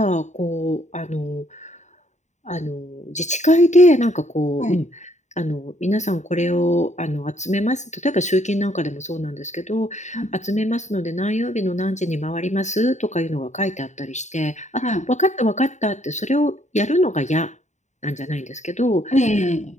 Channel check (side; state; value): right; late; 0.34 ms